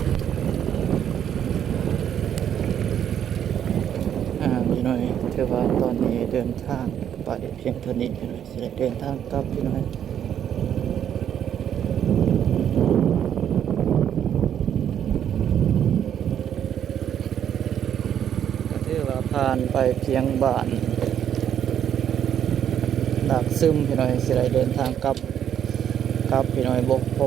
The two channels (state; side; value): quieter; left; 9.4 dB